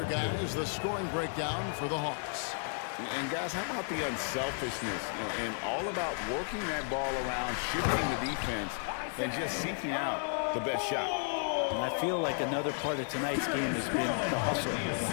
guys, the scoring breakdown for the Hawks. And guys, how about the unselfishness and all about working that ball around, shifting the defense, and just seeking out the best shot. And I feel like another part of tonight's game has been the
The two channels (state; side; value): silent; right; 56 dB below the other